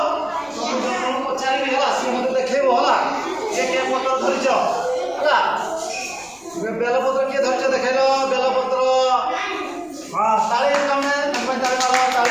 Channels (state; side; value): noise; left; rumble, 30 dB below the sound